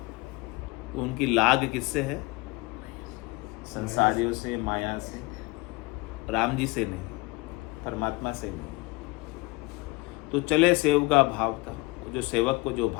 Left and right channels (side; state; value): right; quieter; 24.1 dB